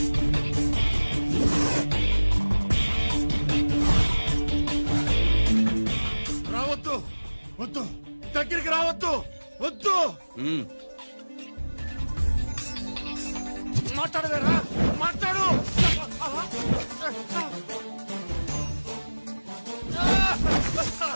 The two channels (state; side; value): inverted; both; correlation -1.00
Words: రావద్దు, వద్దు, దగ్గరికి రావద్దు, వద్దు. మాట్లాడవేరా? మాట్లాడు.